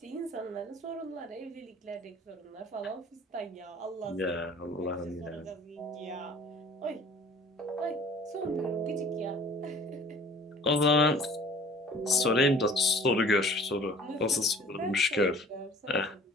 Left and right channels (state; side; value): normal; both; correlation 0.50